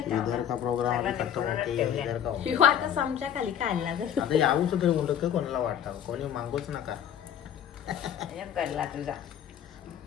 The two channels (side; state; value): right; quieter; 9.5 dB